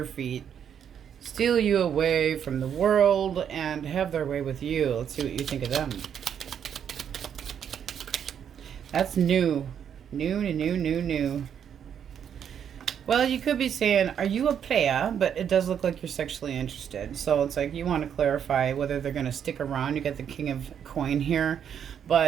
feet, steal you away from the world, and have their way with you. Let's see what you think of them. That's new. New. Well, you could be saying, are you a player? But it does look like you're sexually interested. So it's like you want to clarify whether they're going to stick around. You got the King of Coin here.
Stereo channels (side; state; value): left; quieter; 8.4 dB